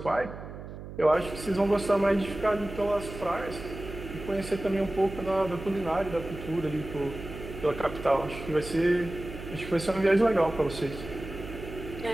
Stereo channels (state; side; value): noise; right; hum, 11 dB below the sound